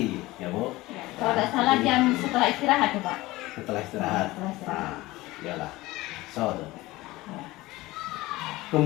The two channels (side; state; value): right; quieter; 19.3 dB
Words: ya Bu. Ya, kalau tidak salah jam setelah istirahat tuh, Pak. Setelah istirahat. Setelah istirahat. Iyalah. So,